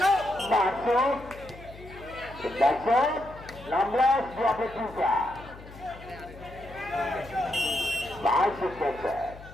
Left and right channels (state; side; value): noise; left; hum, 17 dB below the sound